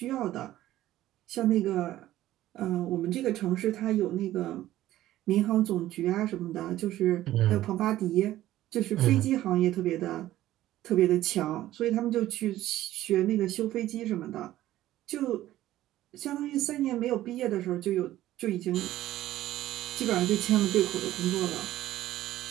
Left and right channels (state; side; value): quieter; left; 14.4 dB